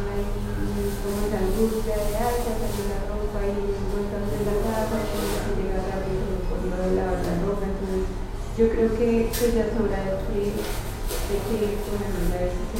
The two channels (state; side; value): identical; both; correlation 1.00